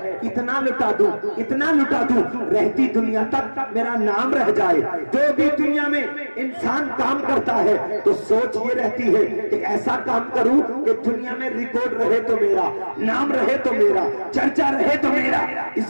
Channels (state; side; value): inverted; both; correlation -1.00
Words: اتنا لٹا دوں اتنا لٹا دوں رہتی دنیا تک میرا نام رہ جائے. جو بھی دنیا میں انسان کام کرتا ہے تو سوچ یہ رہتی ہے کہ ایسا کام کروں کہ دنیا میں ریکارڈ رہے تو میرا, نام رہے تو میرا, چرچا رہے تو میرا.